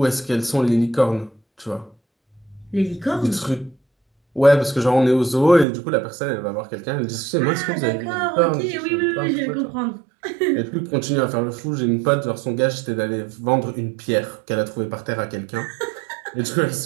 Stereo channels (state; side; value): drops out; left; at 5.7 s